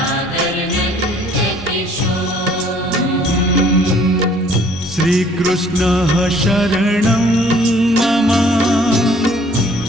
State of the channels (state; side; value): normal; both; correlation 0.58